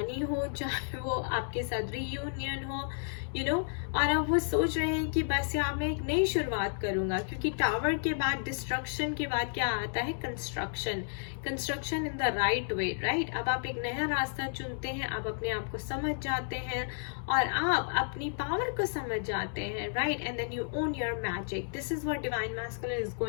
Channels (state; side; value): silent; right; digital silence